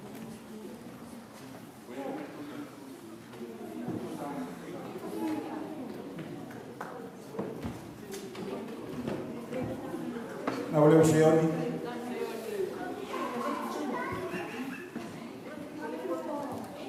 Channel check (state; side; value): identical; both; correlation 1.00